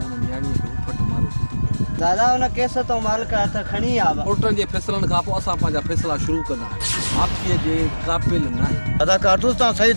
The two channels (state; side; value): inverted; both; correlation -1.00